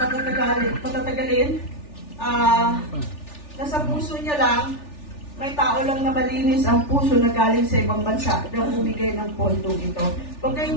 nasa puso niya lang, may tao lang na malinis ang puso na galing sa ibang bansa na bumigay ng pondong ito. Huwag kayong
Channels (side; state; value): right; late; 3.4 ms